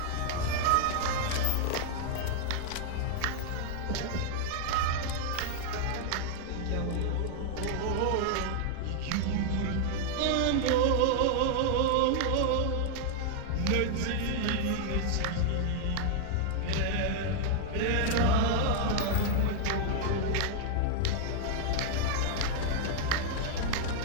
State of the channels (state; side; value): different; both; correlation 0.00